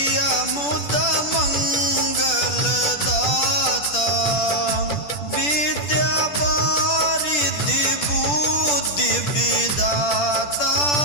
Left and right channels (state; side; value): late; right; 10 ms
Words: मुद मंगल दाता। विद्या वारिधि बुद्धि विदाता